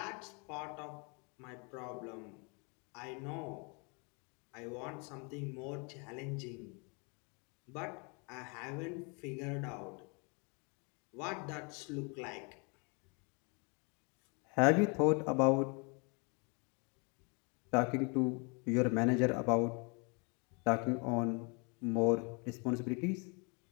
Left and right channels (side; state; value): right; quieter; 33.3 dB